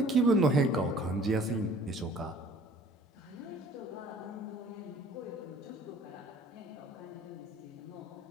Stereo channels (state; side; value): normal; both; correlation 0.52